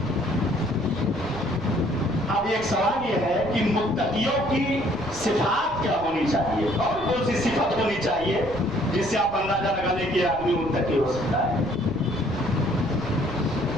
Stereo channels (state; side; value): noise; right; rumble, 16 dB below the sound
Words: اب ایک سوال یہ ہے کہ متقیوں کی صفات کیا ہونی چاہیے اور کون سی صفت ہونی چاہیے جس سے آپ اندازہ لگا لیں کہ آدمی متقی ہو سکتا ہے.